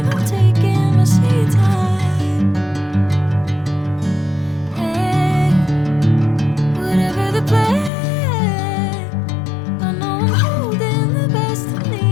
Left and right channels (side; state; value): right; drops out; at 7.9 s